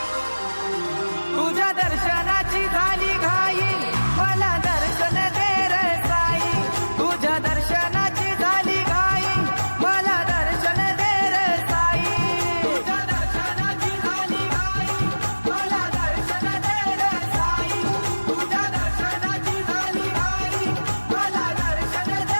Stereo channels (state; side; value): inverted; both; correlation -1.00